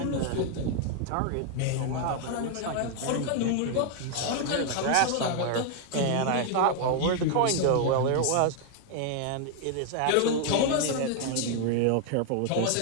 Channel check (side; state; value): both; different; correlation 0.00